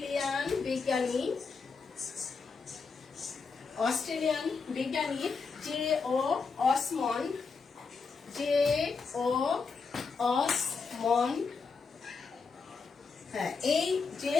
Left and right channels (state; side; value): quieter; right; 4.9 dB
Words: বিজ্ঞানী J.O. অসমন্ড। হ্যাঁ, এই